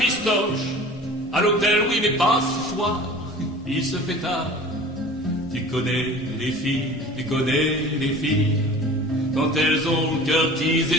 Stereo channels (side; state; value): both; normal; correlation 0.41